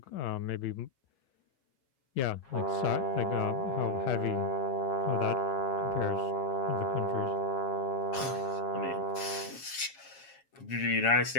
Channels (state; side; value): late; right; 7.3 ms